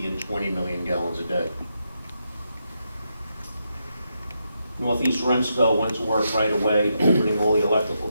and 20 million gallons a day. Northeast Remsco went to work right away, opening all the electrical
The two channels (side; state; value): both; inverted; correlation -0.83